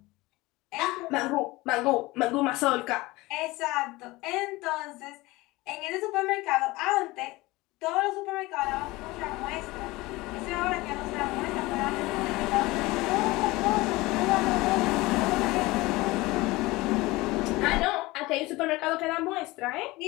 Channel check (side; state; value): right; quieter; 20.8 dB